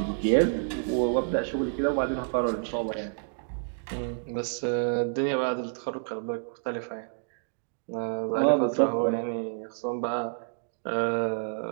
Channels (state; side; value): silent; left; digital silence